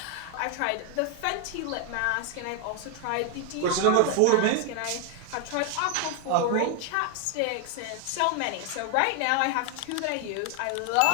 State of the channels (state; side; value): different; both; correlation 0.01